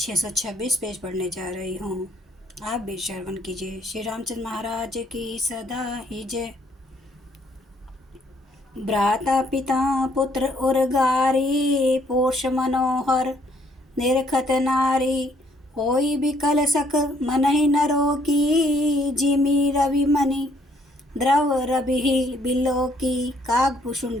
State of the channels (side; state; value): both; normal; correlation 0.66